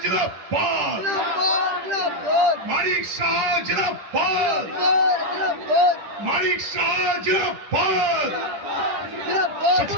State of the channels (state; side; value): late; left; 10 ms